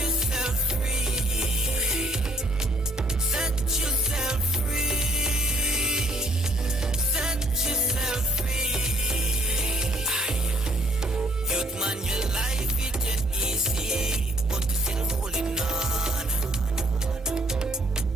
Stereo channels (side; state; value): both; normal; correlation 0.63